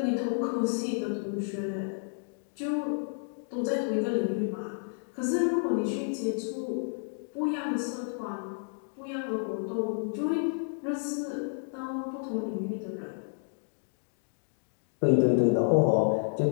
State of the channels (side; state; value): right; silent; digital silence